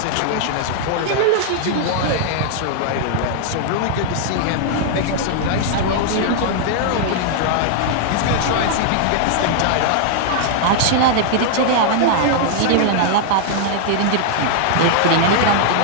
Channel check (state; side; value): different; both; correlation -0.01